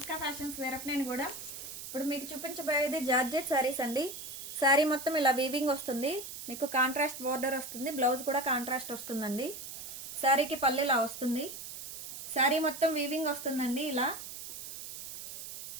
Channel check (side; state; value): right; noise; hiss, 10 dB below the sound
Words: fashions వేరప్. నేను కూడా ఇప్పుడు మీకు చూపించబోయేది జార్జెట్ సారీస్ అండి. సారీ మొత్తం ఇలా వీవింగ్ వస్తుంది, మీకు కాంట్రాస్ట్ బోర్డర్ వస్తుంది, బ్లౌజ్ కూడా కాంట్రాస్ట్ వస్తుందండి. సారీకి పళ్ళు ఇలా వస్తుంది, సారీ మొత్తం వీవింగ్ వస్తుందండి. ఇలా